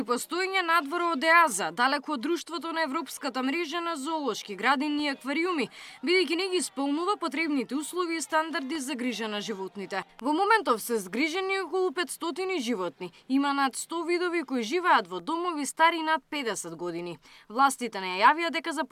постоење надвор од ЕАЗа, далеко од друштвото на Европската мрежа на зоолошки градини и аквариуми, бидејќи не ги исполнува потребните услови и стандарди за грижа на животните. Во моментов се згрижени околу 500 животни. Има над 100 видови кои живеат во домови стари над 50 години. Властите не јавија дека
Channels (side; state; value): both; identical; correlation 1.00